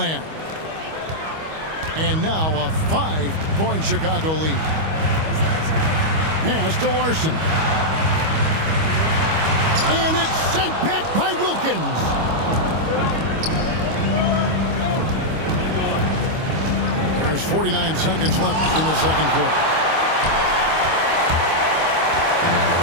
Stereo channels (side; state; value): left; late; 25 ms